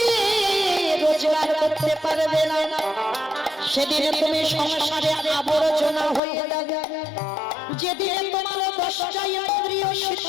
রোজগার করতে পারবে না, সেদিন তুমি সংসারে আবর্জনা হয়ে যাবে, যেদিন তোমার 10টা ইন্দ্রিয়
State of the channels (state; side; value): drops out; right; at 6.2 s